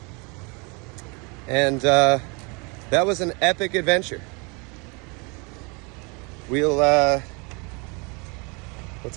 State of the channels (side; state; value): left; quieter; 30.7 dB